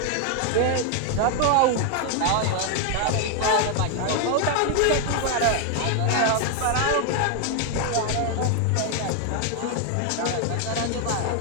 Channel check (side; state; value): both; different; correlation 0.01